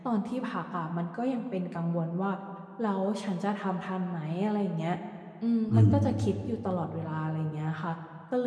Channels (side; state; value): both; identical; correlation 1.00